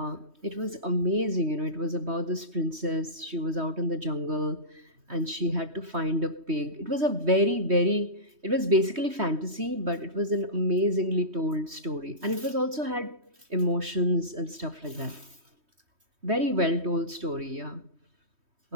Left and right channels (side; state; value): left; late; 3.2 ms